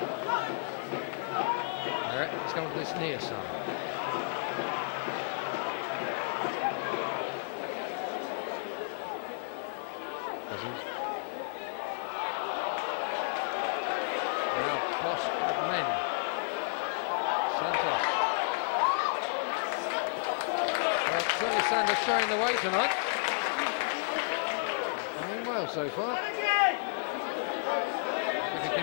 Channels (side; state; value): right; silent; digital silence